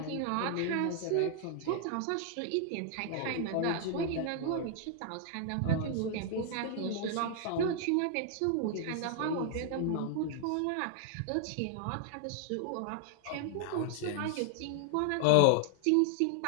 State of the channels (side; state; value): both; different; correlation 0.00